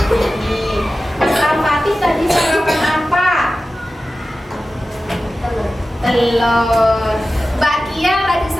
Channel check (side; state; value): both; normal; correlation 0.95